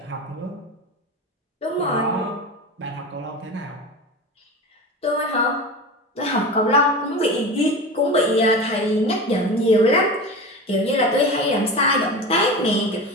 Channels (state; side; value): normal; both; correlation 0.29